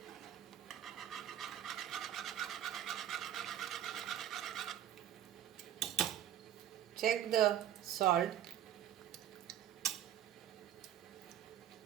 check the salt.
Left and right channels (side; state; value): left; quieter; 11.0 dB